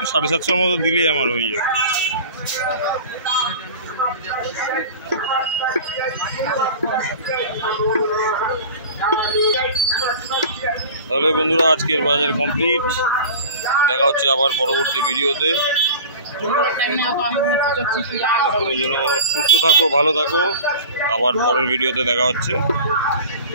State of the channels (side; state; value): both; inverted; correlation -0.38